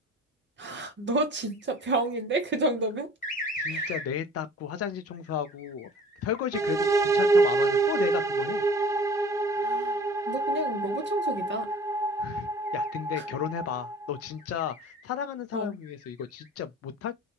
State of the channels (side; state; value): both; normal; correlation 0.46